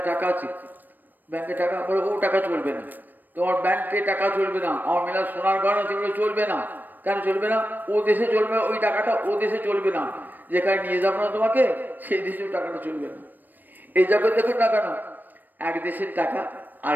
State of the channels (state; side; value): late; left; 0.090 ms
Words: টাকা আছে, ব্যাংকে টাকা, বলে ও টাকা চলবে না, তোমার ব্যাংকে টাকা চলবে না, আমার মেলা সোনার গয়না সেগুলো চলবে না। কেন চলবে না? ও দেশে চলবে, ওই টাকাটা ও দেশে চলবে না, যেখানে নিয়ে যাবো না তোমাকে সেই দেশেও টাকাটা চলবে না। এই জগৎ দেখুন না কেন, এক দেশের টাকা আর